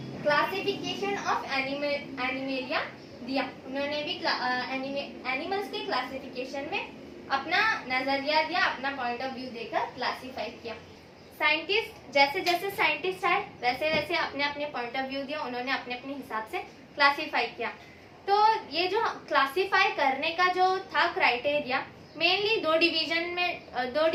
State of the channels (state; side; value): identical; both; correlation 1.00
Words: क्लासिफिकेशन ऑफ एनिमेलिया दिया। उन्होंने भी एनिमल्स के क्लासिफिकेशन में अपना नजरिया दिया, अपना पॉइंट ऑफ व्यू देकर क्लासिफाई किया। साइंटिस्ट जैसे जैसे साइंटिस्ट आए वैसे वैसे अपने अपने पॉइंट ऑफ व्यू दिया, उन्होंने अपने अपने हिसाब से क्लासिफाई किया। तो ये जो क्लासिफाई करने का जो था क्राइटेरिया, मेनली दो